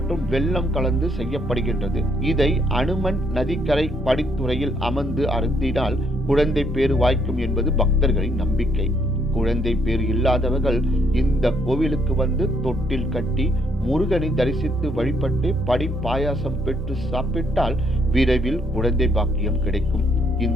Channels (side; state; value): both; normal; correlation 0.70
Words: வெல்லம் கலந்து செய்யப்படுகின்றது. இதை அனுமன் நதிக்கரை படித்துறையில் அமர்ந்து அருந்தினால் குழந்தை பேறு வாய்க்கும் என்பது பக்தர்களின் நம்பிக்கை. குழந்தை பேறு இல்லாதவர்கள் இந்த கோவிலுக்கு வந்து தொட்டில் கட்டி முருகனை தரிசித்து வழிபட்டு படி பாயாசம் பெற்று சாப்பிட்டால் விரைவில் குழந்தை பாக்கியம் கிடைக்கும்.